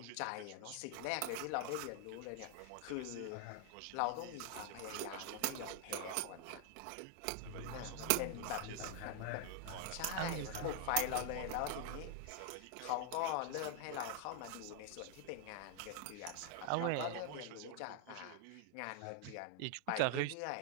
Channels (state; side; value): different; both; correlation 0.00